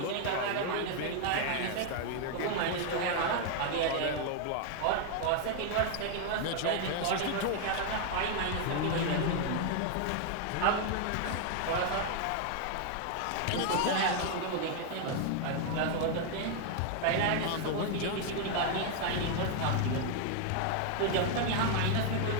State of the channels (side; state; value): both; different; correlation 0.00